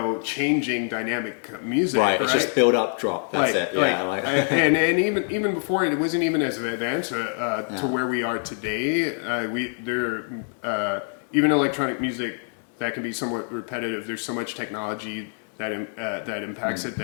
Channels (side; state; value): right; silent; 56 dB below the other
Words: changing dynamic music, right? It's just build up, drop. That's it. And even before it wasn't even as advanced to where we are today. Even electronic music that can be somewhat repetitive. There's so much technology that impacts it,